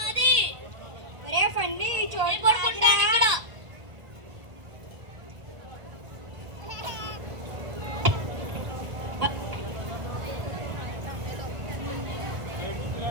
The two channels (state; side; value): late; left; 1.5 ms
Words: ఒరే ఫండి, చోటు పడుకుంటాను ఇక్కడ.